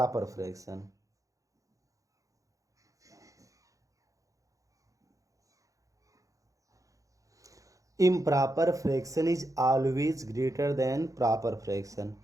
fraction। improper fraction is always greater than proper fraction।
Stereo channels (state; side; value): late; left; 0.16 ms